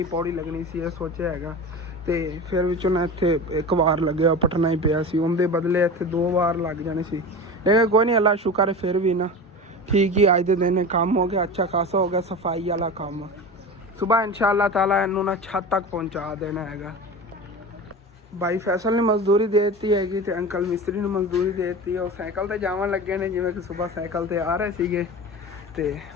ਪੌੜੀ ਲੱਗਣੀ ਸੀ, ਇਹ ਸੋਚਿਆ ਹੈਗਾ। ਤੇ ਫਿਰ ਵਿੱਚੋਂ ਨਾ ਇੱਥੇ ਇੱਕ ਵਾਰ ਲੱਗਿਆ, ਪਟਣਾ ਹੀ ਪਿਆ ਸੀ, ਉਹਦੇ ਬਦਲੇ ਇੱਥੇ 2 ਵਾਰ ਲੱਗ ਜਾਣੇ ਸੀ। ਲੇਕਿਨ ਕੋਈ ਨਹੀਂ, ਅੱਲਾ ਸ਼ੁਕਰ ਹੈ ਫਿਰ ਵੀ ਨਾ ਠੀਕ ਹੀ ਅੱਜ ਦੇ ਦਿਨ ਕੰਮ ਹੋ ਗਿਆ, ਅੱਛਾ ਖਾਸਾ ਹੋ ਗਿਆ ਸਫਾਈ ਵਾਲਾ ਕੰਮ। ਸੁਬਾਹ ਇਨਸ਼ਾਅੱਲਾ ਤਾਲਾ ਇਹਨੂੰ ਨਾ ਛੱਤ ਤੱਕ ਪਹੁੰਚਾ ਦੇਣਾ ਹੈਗਾ। भाई फैसल ने मजदूरी दे दी हैगी ते अंकल मिस्त्री ने मजदूरी दे दी। वो साइकिल ते जावन लगे ने, जिवें कि सुबह साइकिल ते आ रहे सीगे। ते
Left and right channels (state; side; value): normal; both; correlation 0.30